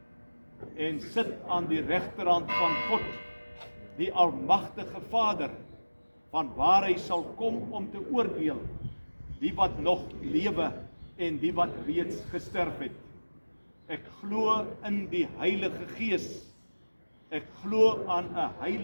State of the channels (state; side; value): inverted; both; correlation -1.00